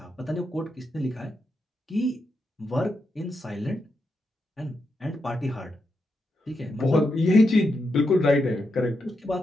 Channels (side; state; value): both; normal; correlation 0.84